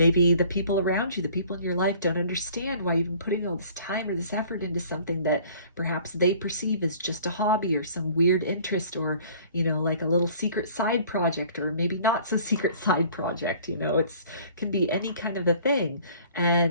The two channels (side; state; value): both; inverted; correlation -0.51